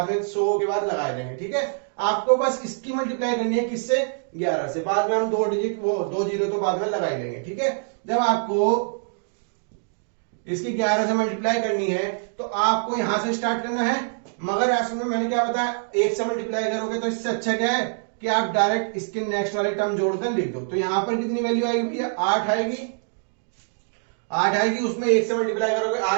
में 100 के बाद लगा देंगे। ठीक है, आपको बस इसकी मल्टीप्लाई करनी है, किससे, 11 से, बाद में हम 2 डिजिट वो 2 जीरो तो बाद में लगा ही लेंगे। ठीक है, जब आपको इसकी 11 से मल्टीप्लाई करनी है तो आपको यहां से स्टार्ट करना है, मगर ऐसे में मैंने क्या बताया, 1 से मल्टीप्लाई करोगे तो इससे अच्छा क्या है कि आप डायरेक्ट इसके नेक्स्ट वाले टर्म जोड़कर लिख दो। तो यहां पर कितनी वैल्यू आएगी भैया, 8 आएगी, 8 आएगी, उसमें 1 से मल्टीप्लाई करोगे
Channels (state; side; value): silent; left; digital silence